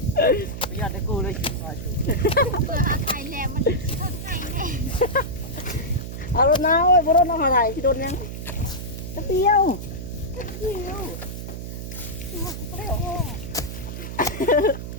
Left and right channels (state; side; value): noise; right; hum, 8 dB below the sound